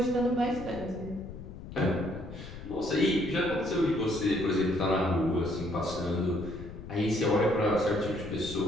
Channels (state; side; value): noise; left; rumble, 12 dB below the sound